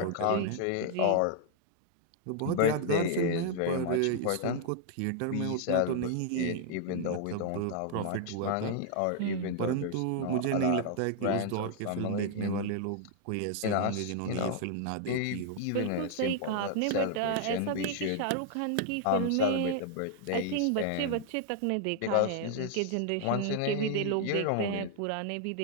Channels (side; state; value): both; different; correlation -0.01